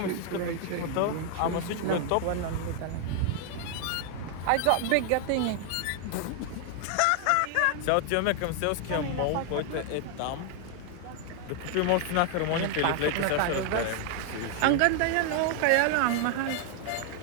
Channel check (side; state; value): both; different; correlation 0.00